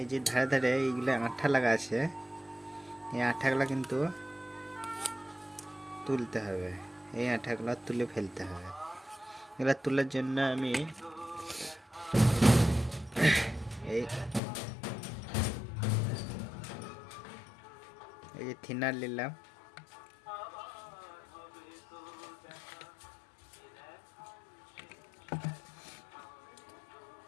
যে ধারে ধারে এইগুলো আঠা লাগা আছে, এই আঠাগুলো কিন্তু তুলতে হবে। এই আঠাগুলো তুলে ফেলতে হবে। এগুলো তোলার জন্য আমি এই যে থিনার নিলাম,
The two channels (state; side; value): drops out; right; at 14.4 s